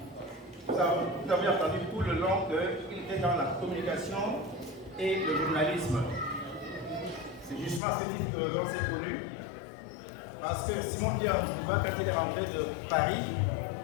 Vous avez entendu tout le long qu'il était dans la communication et le journalisme. C'est justement à ce titre qu'on s'est connu. Parce que Simon-Pierre Youba, quand il est rentré de Paris,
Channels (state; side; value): drops out; right; at 7.8 s